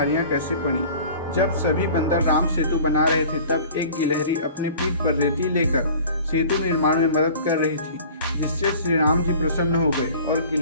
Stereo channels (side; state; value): both; inverted; correlation -0.45